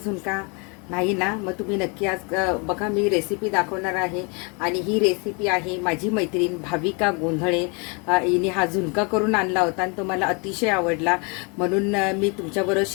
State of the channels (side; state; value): right; quieter; 32.8 dB